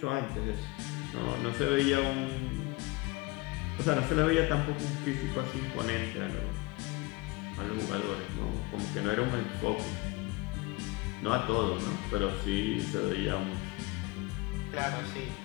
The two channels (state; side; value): quieter; right; 22.4 dB